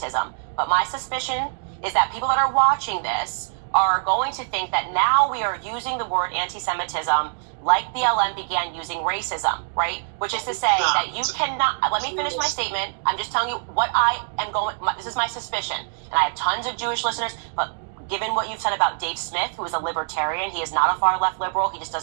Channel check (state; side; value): silent; left; digital silence